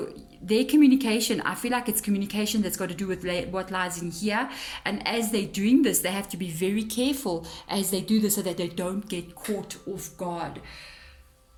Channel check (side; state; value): both; identical; correlation 1.00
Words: their communication, I feel like it's communication that's got to do with what lies in here. And as they're doing this, they have to be very careful as they do this so that they don't get caught off guard.